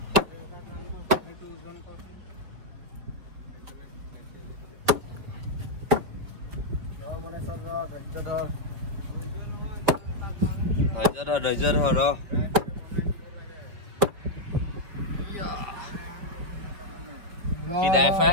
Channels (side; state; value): left; late; 4.7 ms